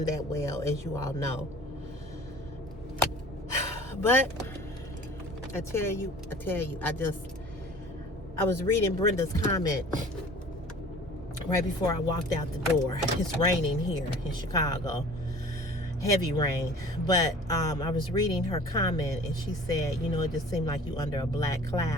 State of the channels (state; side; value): normal; both; correlation 0.46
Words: that well, as you all know. But I tell you, I was reading Brenda's comment right before I walked out the door. It's raining here in Chicago. Heavy rain, but I was reading her comment and she said, it just seemed like you under a black